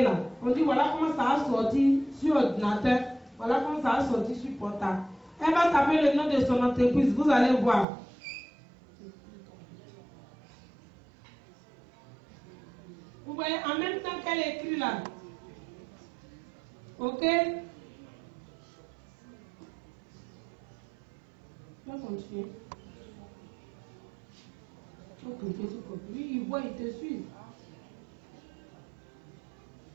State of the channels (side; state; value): left; drops out; at 7.9 s